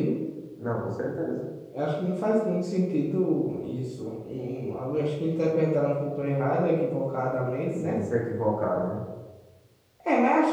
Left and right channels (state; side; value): identical; both; correlation 1.00